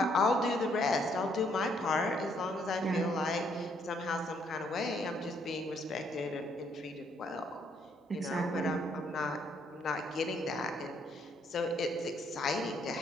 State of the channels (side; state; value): both; normal; correlation 0.69